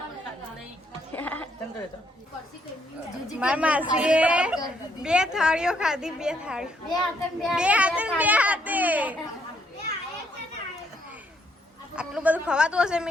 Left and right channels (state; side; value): normal; both; correlation 0.71